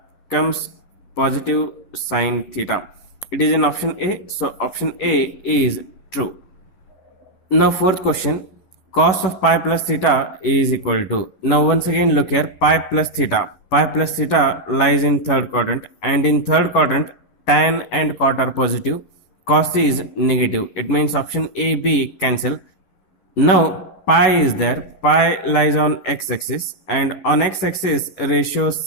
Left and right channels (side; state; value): right; late; 11 ms